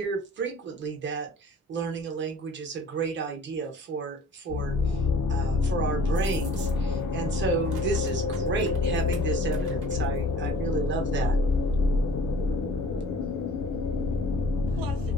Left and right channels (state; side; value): normal; both; correlation 0.50